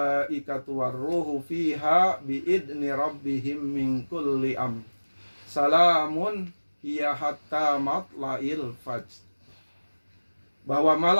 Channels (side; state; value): both; inverted; correlation -1.00